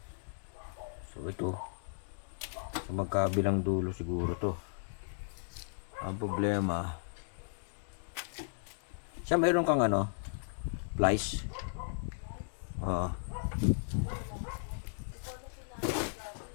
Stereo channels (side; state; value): right; silent; digital silence